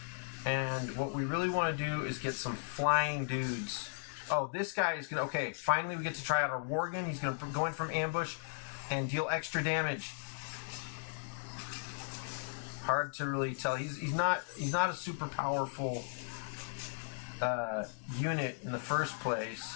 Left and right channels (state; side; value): silent; right; digital silence